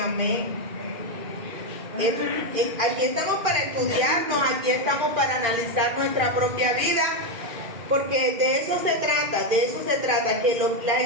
Aquí estamos para estudiarnos, aquí estamos para analizar nuestra propia vida, porque de eso se trata, que la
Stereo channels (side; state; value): left; late; 2.5 ms